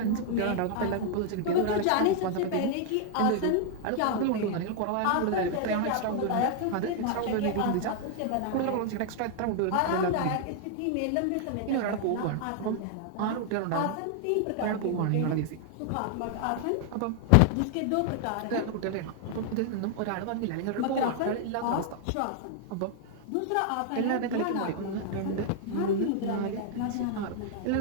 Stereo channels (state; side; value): different; both; correlation 0.00